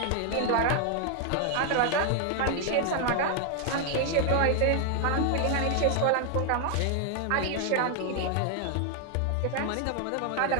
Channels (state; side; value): different; both; correlation 0.00